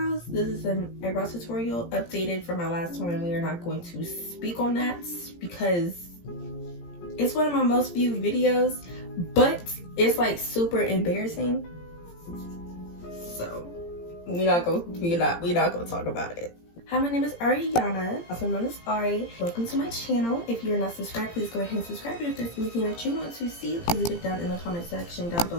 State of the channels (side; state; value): right; late; 17 ms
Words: This is an eyebrow tutorial updated from my last one, and we are not going to speak on that because it's one of my most viewed videos, but it's like super embarrassing. So we're not gonna talk about it. Hi, my name is Ariana, also known as Ari. Welcome to my channel. If you're not subscribed, please go ahead and subscribe. And if there's anything that you want to see, please leave it down in the comment section down